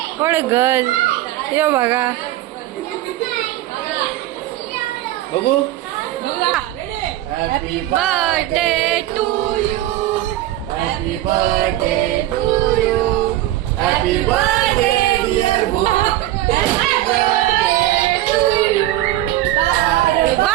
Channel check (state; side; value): quieter; left; 14.9 dB